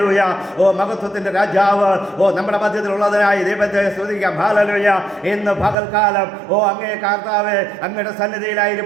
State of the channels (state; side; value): drops out; left; at 5.8 s